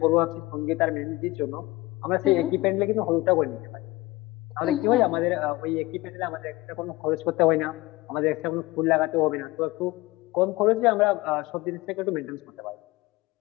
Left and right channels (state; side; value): quieter; right; 20.3 dB